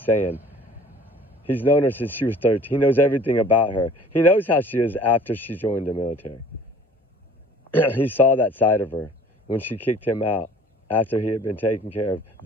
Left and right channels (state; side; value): normal; both; correlation 0.50